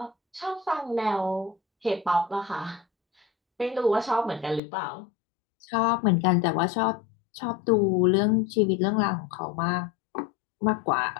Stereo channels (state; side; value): drops out; right; at 4.6 s